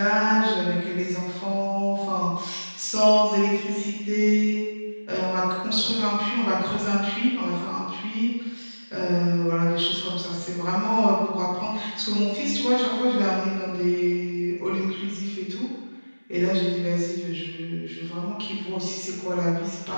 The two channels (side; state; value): both; inverted; correlation -1.00